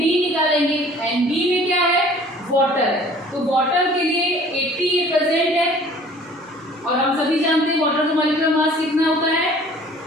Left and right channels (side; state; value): both; normal; correlation 0.51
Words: निकालेंगे, Nb में क्या है वाटर है, तो वाटर के लिए 80 ये प्रेजेंट है, और हम सभी जानते हैं वाटर का मॉलिक्यूलर मास कितना होता है,